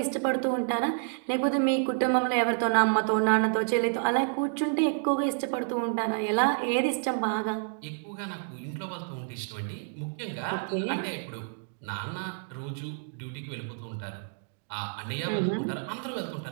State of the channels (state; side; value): silent; left; 56 dB below the other